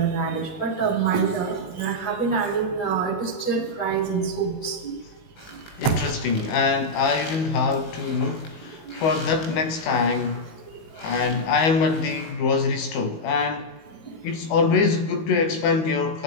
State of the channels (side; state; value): right; late; 19 ms